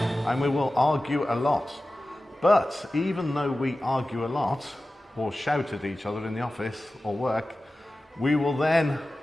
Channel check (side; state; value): both; normal; correlation 0.95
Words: and we will argue a lot. But even though we argue a lot or shout at each other in the office or work, we will then